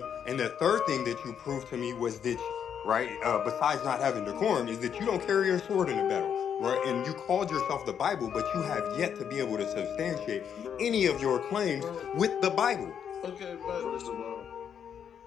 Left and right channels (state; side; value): quieter; right; 8.2 dB